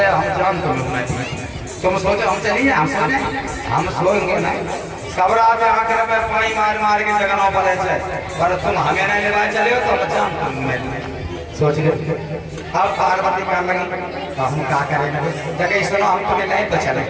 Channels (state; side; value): identical; both; correlation 1.00